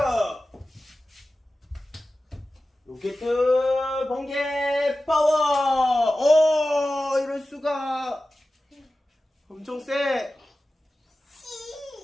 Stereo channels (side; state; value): both; normal; correlation 0.95